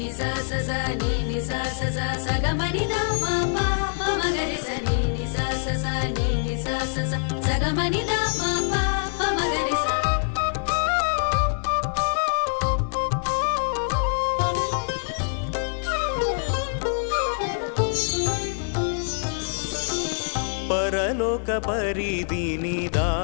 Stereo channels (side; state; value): right; silent; digital silence